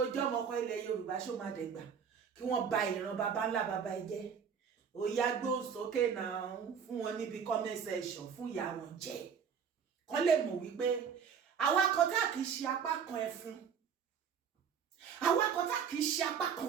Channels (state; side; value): quieter; left; 7.1 dB